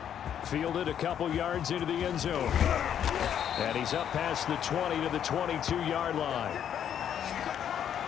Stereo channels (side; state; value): right; quieter; 9.3 dB